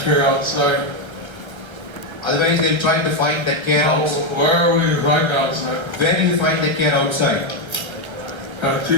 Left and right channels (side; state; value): left; late; 1.3 ms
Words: outside, Otherwise they'll try to find that care outside. where will you find outside? Where do you find the care outside? And